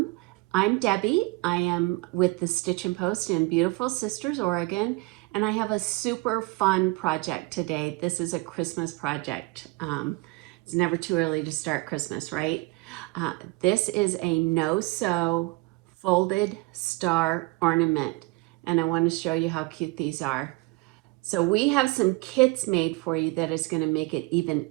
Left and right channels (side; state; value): left; quieter; 24.9 dB